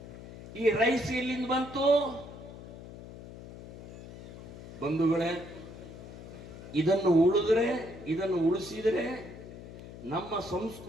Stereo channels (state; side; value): noise; left; hum, 14 dB below the sound